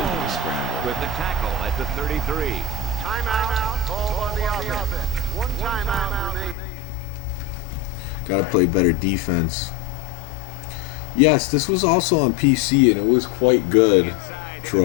to scramble. With the tackle at the 33. Timeout. Call on the offense. One timeout remaining. Gotta play better defense. Yes, this was also on PC and it was quite good, Inside Troy.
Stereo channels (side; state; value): right; drops out; at 6.6 s